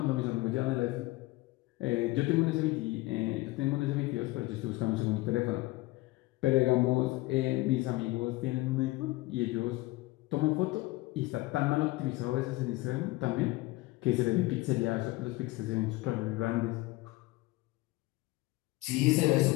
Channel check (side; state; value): right; quieter; 20.3 dB